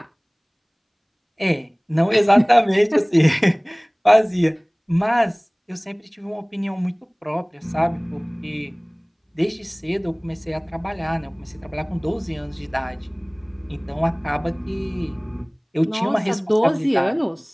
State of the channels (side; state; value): both; identical; correlation 1.00